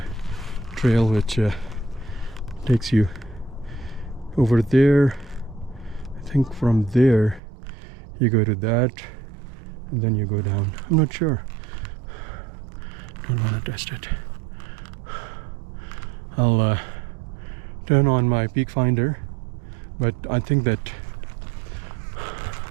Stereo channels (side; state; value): left; drops out; at 7.4 s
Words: trail which takes you over there. I think from there you go to that and then you go down. I'm not sure. Don't want to test it. I'll turn on my peak finder, but I think